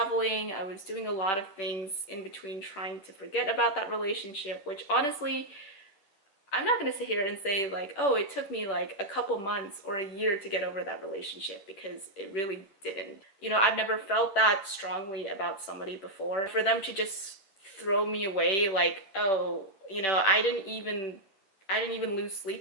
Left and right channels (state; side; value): late; right; 10 ms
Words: I was doing a lot of things in between trying to forget about that relationship, which honestly, I'm not gonna sit here and say like, oh, it took me like a couple months or a year to get over that relationship, because it really didn't. You know, I've never felt that strongly about somebody before. For them to just throw me away like, oh, you know, I didn't even lose